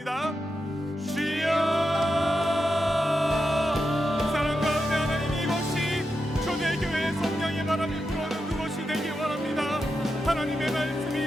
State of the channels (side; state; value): both; normal; correlation 0.87